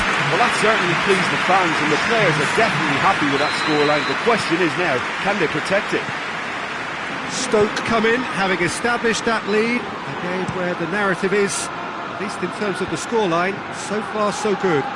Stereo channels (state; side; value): identical; both; correlation 1.00